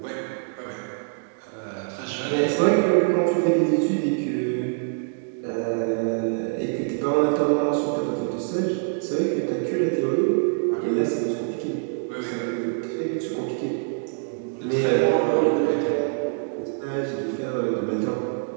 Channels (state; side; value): silent; left; 62 dB below the other